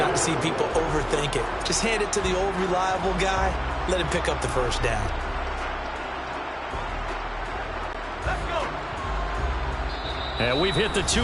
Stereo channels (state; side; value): identical; both; correlation 1.00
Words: to see people overthink it. Just hand it to the old reliable guy. Let him pick up the first down. Let's go. And we've hit the